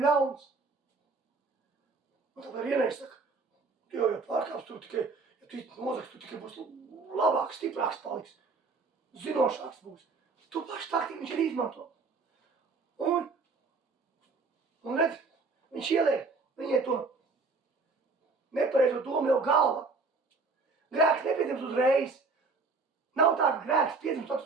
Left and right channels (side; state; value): left; quieter; 4.1 dB